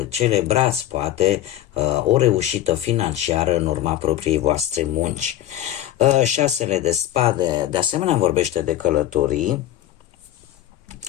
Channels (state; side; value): quieter; right; 12.7 dB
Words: celebrați poate o reușită financiară în urma propriei voastre munci. 6 de spade de asemenea vorbește de călătorii,